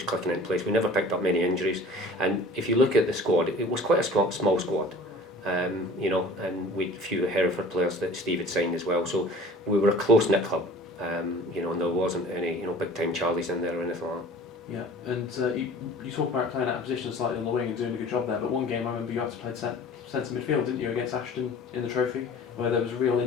clicking in place. We never picked up many injuries, and if you look at the squad, it was quite a small squad, and we had a few Hereford players that Steve had signed as well, so we were a close-knit club, and there wasn't any big-time Charlies in there or anything like that. Yeah, and you talk about playing out of position slightly on the wing and doing a good job there, but one game I remember you had to play centre midfield, didn't you, against Ashton in the trophy, where there was a real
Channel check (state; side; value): normal; both; correlation 0.45